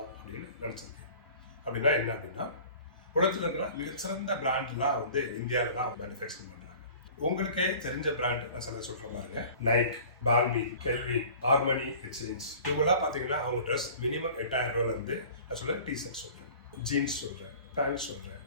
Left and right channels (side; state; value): both; inverted; correlation -0.44